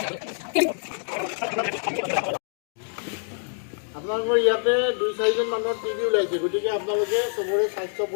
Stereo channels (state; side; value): silent; right; 61 dB below the other